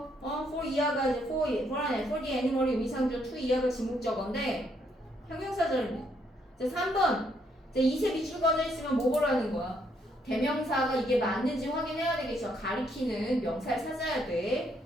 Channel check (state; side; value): normal; both; correlation 0.72